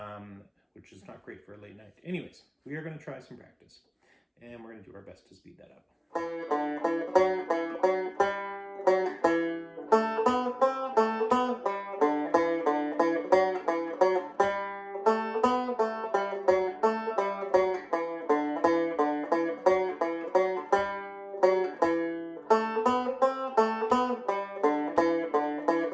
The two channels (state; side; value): identical; both; correlation 1.00